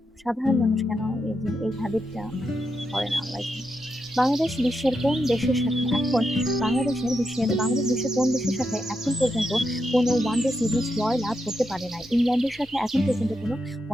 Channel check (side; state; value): both; normal; correlation 0.84